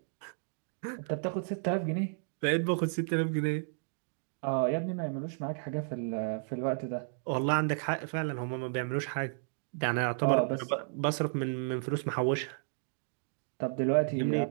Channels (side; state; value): left; silent; digital silence